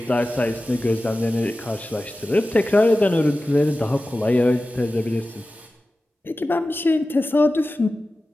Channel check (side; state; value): both; normal; correlation 0.95